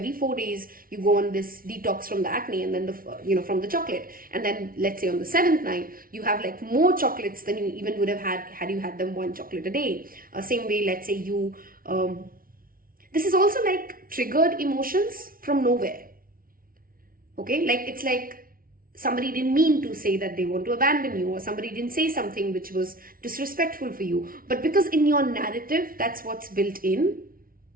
4 days, you go on this detox from the acne and then from the chocolate. And then let's say on the 7th night, you have like more chocolates than you even would have had you had them 1 chocolate a day. Same way, let's say you, this is also like triggered emotions from nowhere. Okay, like it's like somebody didn't mean to say that they want to abandon you, or somebody didn't say something which was disrespectful for you. But because in your narrative, that's what's built in,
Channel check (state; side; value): late; left; 0.42 ms